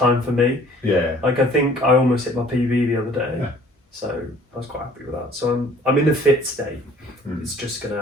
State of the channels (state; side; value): normal; both; correlation 0.54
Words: for me. Yeah. Like, I think I almost hit my PB the other day. Yeah. So I was quite happy with that. So I'm in a fit state. It's just